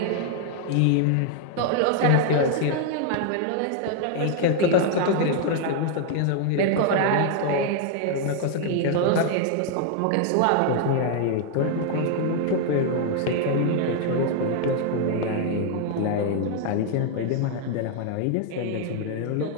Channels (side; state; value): both; different; correlation 0.00